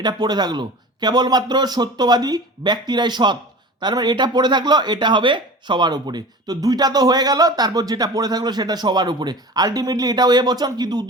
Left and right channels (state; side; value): normal; both; correlation 0.36